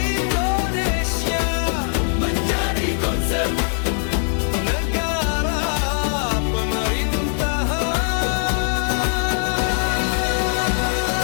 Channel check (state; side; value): silent; right; 65 dB below the other